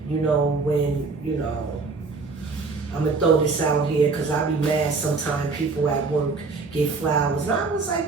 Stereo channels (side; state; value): left; quieter; 4.2 dB